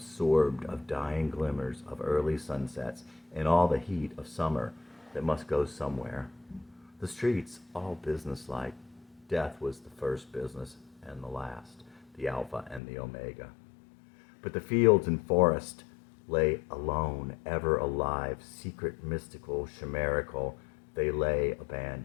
of dying glimmers of early sunsets and all the heat of summer that must go somewhere. The streets, all businesslike. Death was the first business and the last, the Alpha and the Omega. But the fields and forest lay alone, ever alive, secret, mystical, chimerical. They lay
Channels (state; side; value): drops out; right; at 12.8 s